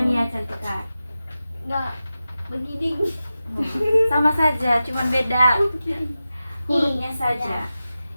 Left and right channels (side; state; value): both; inverted; correlation -0.93